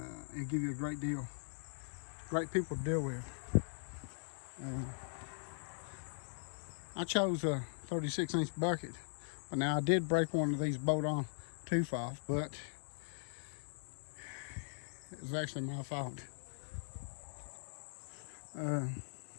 He'll give you a great deal. Great people to deal with. I chose a 36-inch bucket, but now I did break one of these bolt-on tooth off, but it was actually my fault.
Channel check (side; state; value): right; silent; digital silence